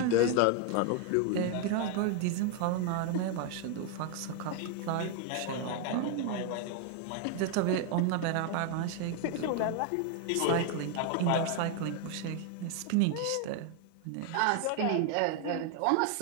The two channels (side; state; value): both; different; correlation 0.00